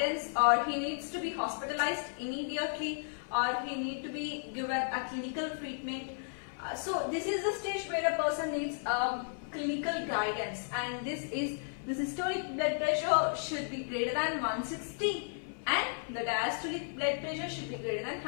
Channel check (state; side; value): silent; right; 55 dB below the other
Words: or he needs to be hospitalized immediately, or he needs to be given a clinical treatment. So, this is the stage where a person needs clinical guidance, and the systolic blood pressure should be greater than 160. And the diastolic blood pressure should be greater than